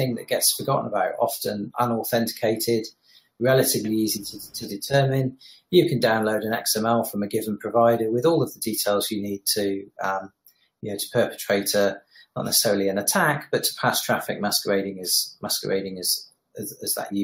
that gets forgotten about, often unauthenticated, relatively easy to determine. You can download an XML from a given provider with all of the details you need to perpetrate not necessarily an attack, but to pass traffic masquerading as that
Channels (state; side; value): identical; both; correlation 1.00